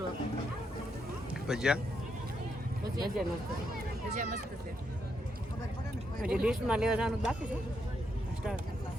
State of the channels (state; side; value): normal; both; correlation 0.79